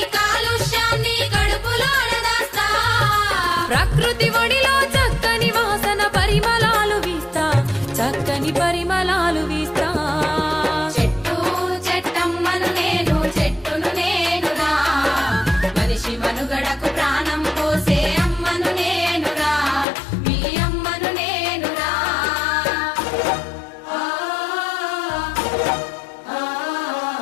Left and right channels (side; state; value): right; drops out; at 19.9 s